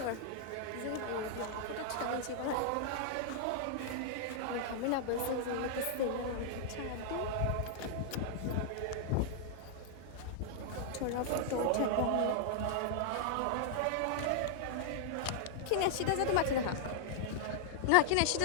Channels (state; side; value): different; both; correlation 0.00